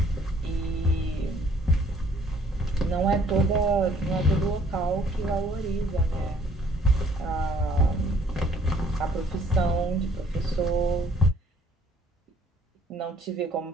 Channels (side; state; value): both; normal; correlation 0.60